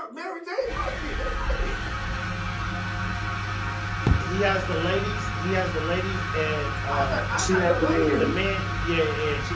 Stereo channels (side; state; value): both; identical; correlation 1.00